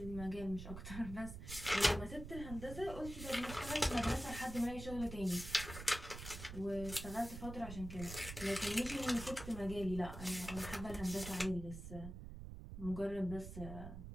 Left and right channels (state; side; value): noise; right; rumble, 9 dB below the sound